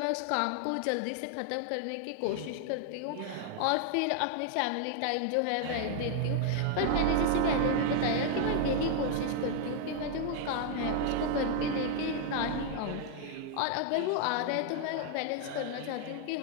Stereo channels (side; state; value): both; different; correlation 0.00